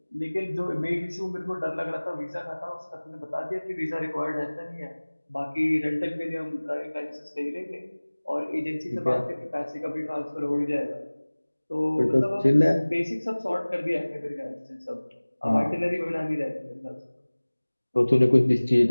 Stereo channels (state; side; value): inverted; both; correlation -1.00